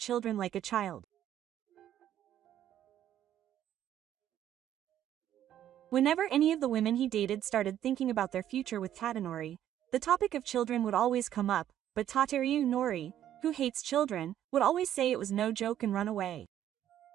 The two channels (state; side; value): quieter; left; 11.2 dB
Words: like a child. Whenever any of the women he dated started thinking about their future with Tadanori, the topic of children would always come up, but Tateru Nori, who hates children, would always say it was no joke and run away.